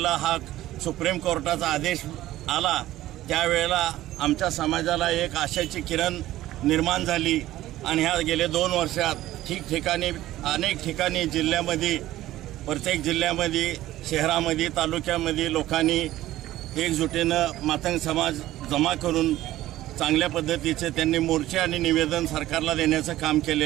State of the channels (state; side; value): quieter; left; 15.1 dB